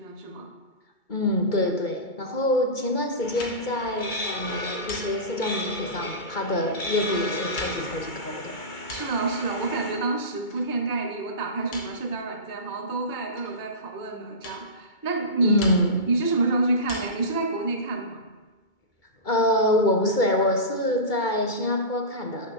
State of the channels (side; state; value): right; late; 2.2 ms